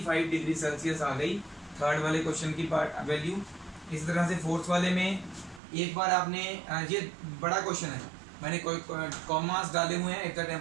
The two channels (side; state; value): left; drops out; at 5.6 s